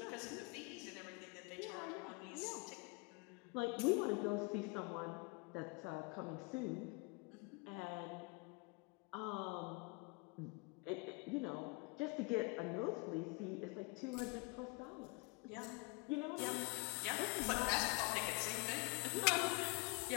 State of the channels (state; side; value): quieter; right; 29.2 dB